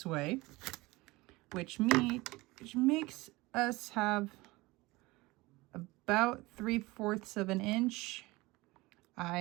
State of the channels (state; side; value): quieter; left; 21.6 dB